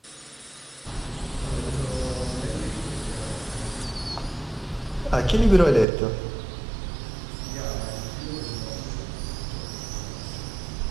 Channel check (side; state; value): left; drops out; at 5.9 s